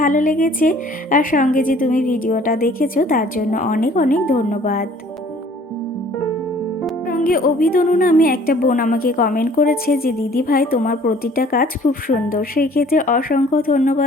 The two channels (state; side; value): normal; both; correlation 0.54